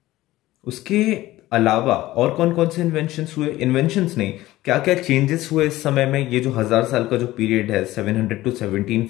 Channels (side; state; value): right; quieter; 16.6 dB